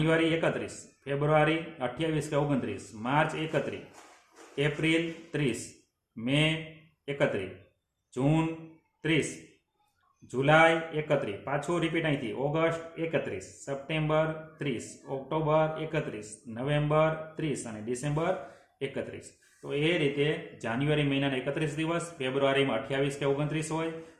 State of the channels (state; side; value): identical; both; correlation 1.00